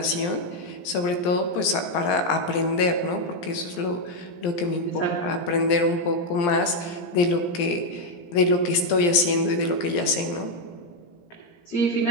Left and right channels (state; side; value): late; right; 17 ms